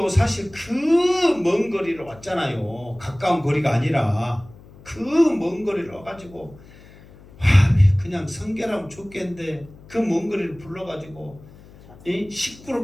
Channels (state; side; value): noise; left; hum, 22 dB below the sound